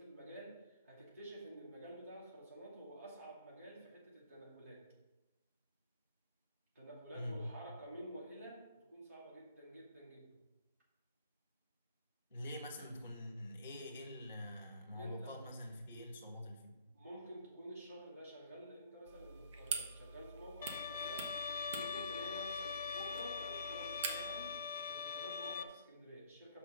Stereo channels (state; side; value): inverted; both; correlation -0.60